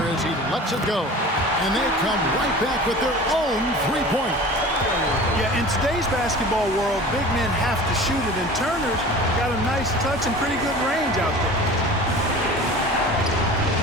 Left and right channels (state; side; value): normal; both; correlation 0.39